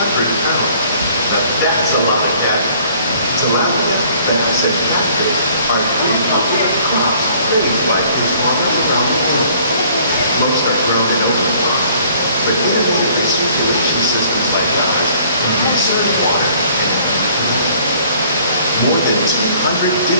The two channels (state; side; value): inverted; both; correlation -0.57